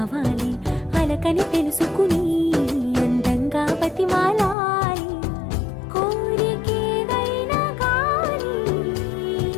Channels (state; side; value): drops out; right; at 4.5 s